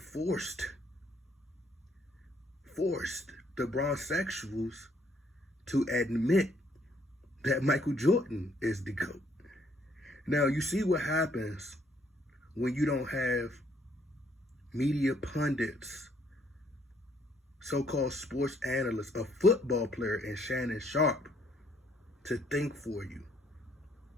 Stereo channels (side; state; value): both; normal; correlation 0.67